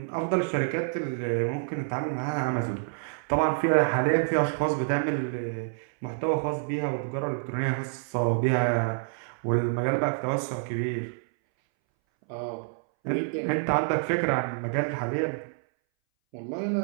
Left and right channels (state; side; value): silent; left; 59 dB below the other